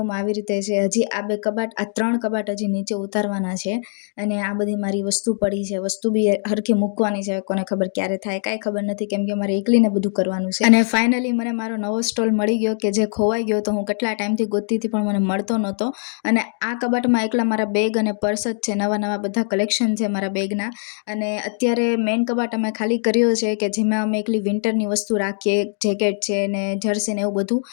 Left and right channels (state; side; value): silent; right; 65 dB below the other